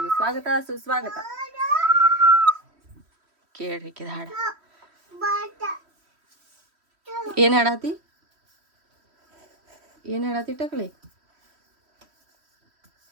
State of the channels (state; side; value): late; left; 3.1 ms